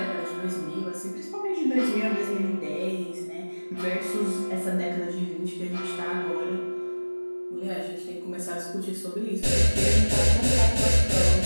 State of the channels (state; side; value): inverted; both; correlation -1.00